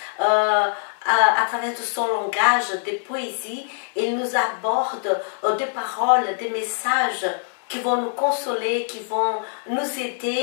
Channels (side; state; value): right; silent; 63 dB below the other